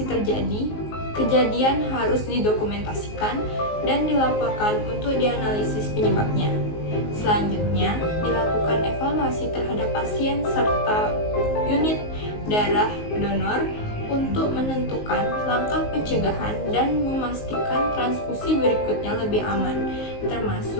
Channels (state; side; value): late; right; 19 ms